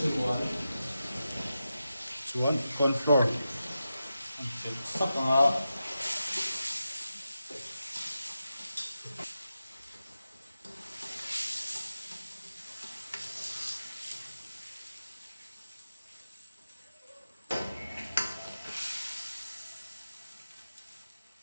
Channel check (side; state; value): both; inverted; correlation -0.90